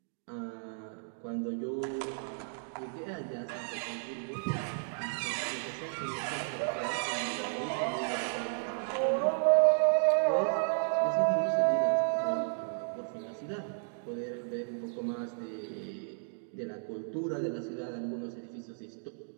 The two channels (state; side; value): silent; left; digital silence